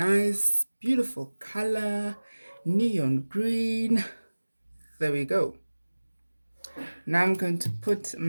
beautiful color, neon green. There we go. Now I'm going to put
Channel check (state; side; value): inverted; both; correlation -1.00